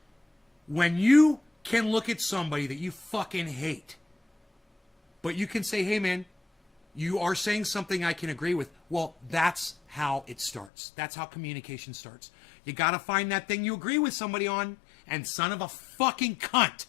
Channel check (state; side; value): drops out; right; at 10.7 s